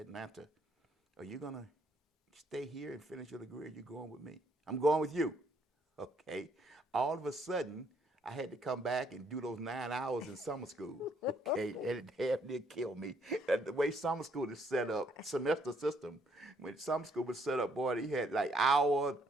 Are you going to stay here and finish your degree, or are you going with me? I'm going with you. Okay. All of a sudden, I had to come back and do those 9 hours in summer school. Okay. And it damn near killed me. The way summer school is set up, semester system, when summer school was set up, boy, they had like hour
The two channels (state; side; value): normal; both; correlation 0.69